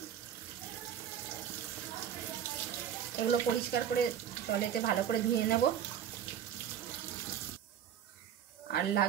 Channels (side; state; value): left; quieter; 9.5 dB